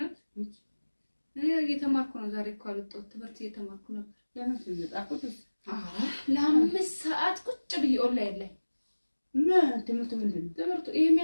እኔ እየተማርኩ ነው ዛሬ እኮ አልወጣሁም ትምህርት እየተማርኩ ነበር ለምን ትመጣኩት ለ5 ሰዓት ቁጭ ብዬ ኦንላይን ላይ ትምህርቱ ምንድን ነው ትምህርቱ ይሄ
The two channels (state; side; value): inverted; both; correlation -1.00